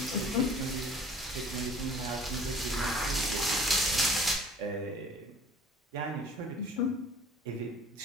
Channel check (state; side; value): normal; both; correlation 0.49